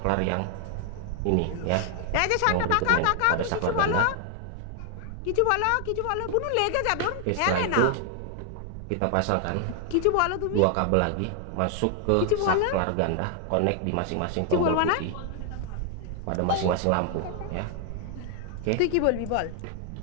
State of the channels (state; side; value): different; both; correlation 0.00